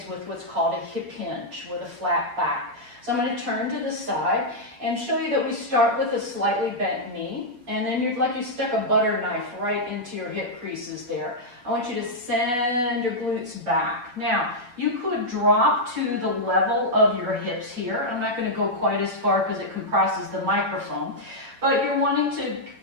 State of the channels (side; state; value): left; late; 8.1 ms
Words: with what's called a hip hinge with a flat back. So I'm going to turn to the side and show you that we start with a slightly bent knee, and then you'd like you stuck a butter knife right into your hip creases there. I want you to send your glutes back. Now, you could drop to the level of your hips here. I'm not going to go quite as far because it compresses the microphone, but you're wanting to